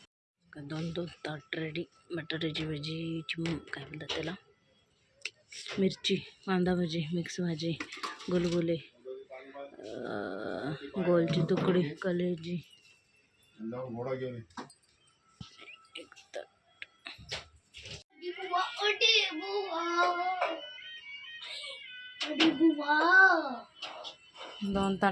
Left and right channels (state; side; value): identical; both; correlation 1.00